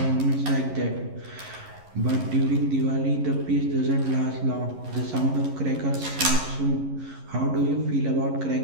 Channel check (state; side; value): late; left; 11 ms